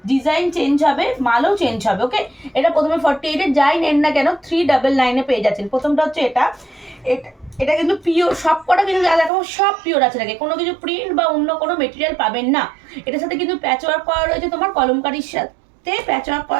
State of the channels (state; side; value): drops out; left; at 9.3 s